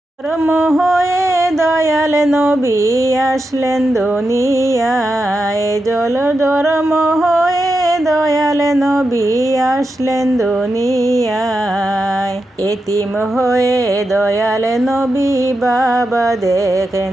ধর্ম হয়ে দয়াল নবী আসলেন দুনিয়ায়, জল ধর্ম হয়ে দয়াল নবী আসলেন দুনিয়ায়। এতিম হয়ে দয়াল নবী বাবা দেখেন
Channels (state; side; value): normal; both; correlation 0.88